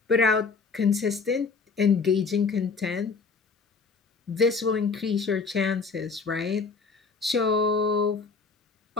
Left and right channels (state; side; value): quieter; right; 4.7 dB